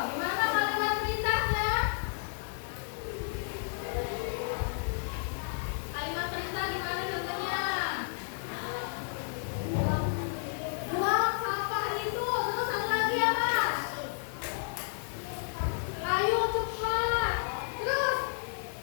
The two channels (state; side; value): silent; right; 57 dB below the other